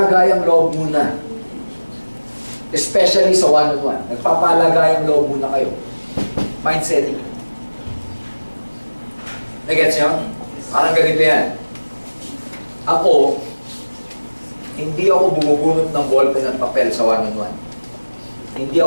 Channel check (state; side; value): inverted; both; correlation -1.00